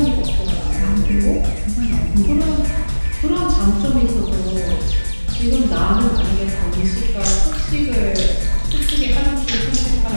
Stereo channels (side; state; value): both; inverted; correlation -1.00